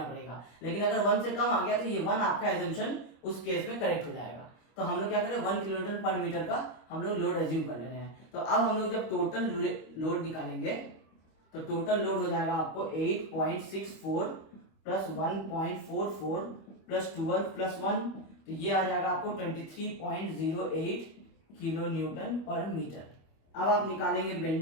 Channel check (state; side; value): late; right; 25 ms